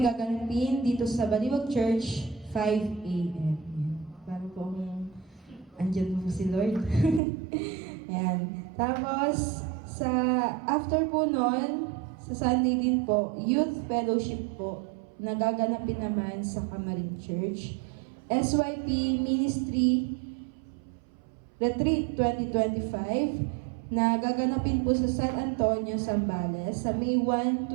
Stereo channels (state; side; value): drops out; left; at 7.2 s